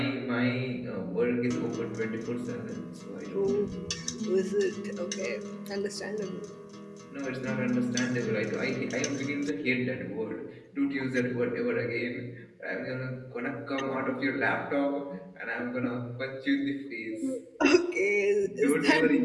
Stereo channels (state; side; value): identical; both; correlation 1.00